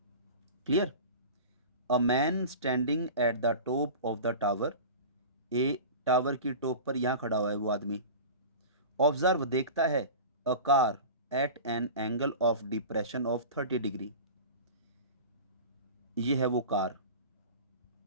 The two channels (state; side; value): inverted; both; correlation -0.34